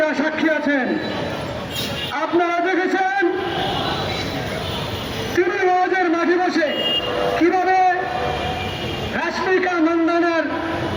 সাক্ষী আছেন। আপনারা দেখেছেন তিনি ওয়াজের মাঠে বসে কিভাবে রাশমিকা মন্দানার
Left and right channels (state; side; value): identical; both; correlation 1.00